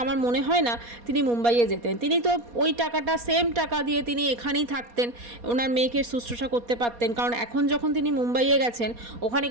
আমার মনে হয় না তিনি মুম্বাইয়ে যেতেন। তিনি তো ওই টাকাটা, সেম টাকা দিয়ে তিনি এখানেই থাকতেন, ওনার মেয়েকে শুশ্রূষা করতে পারতেন। কারণ এখন যখন তিনি মুম্বাইয়ে গেছেন, ওখানে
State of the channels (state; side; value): late; left; 4.2 ms